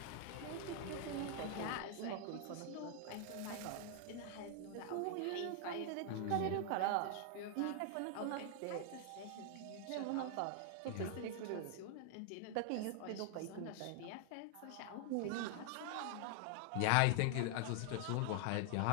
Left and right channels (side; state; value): both; different; correlation 0.00